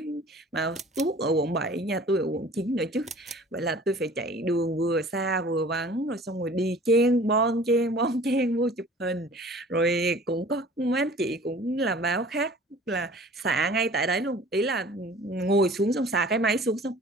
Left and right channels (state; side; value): normal; both; correlation 0.47